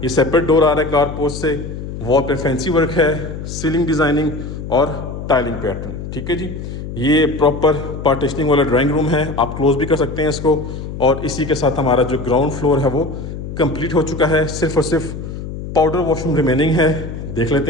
ये सेपरेट डोर आ रहा है कार पोस्ट से। वॉल पे फैंसी वर्क है, सीलिंग डिज़ाइनिंग और टाइलिंग पैटर्न, ठीक है जी। ये प्रॉपर पार्टीशनिंग वाला ड्राइंग रूम है, आप क्लोज भी कर सकते हैं इसको। और इसी के साथ हमारा जो ग्राउंड फ्लोर है वो कंप्लीट हो चुका है। सिर्फ और सिर्फ पाउडर वॉशरूम रिमेनिंग है, देख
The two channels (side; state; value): left; noise; hum, 8 dB below the sound